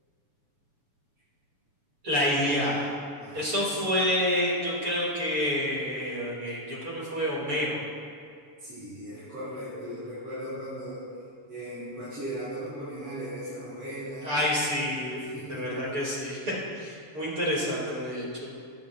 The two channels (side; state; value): left; late; 7.0 ms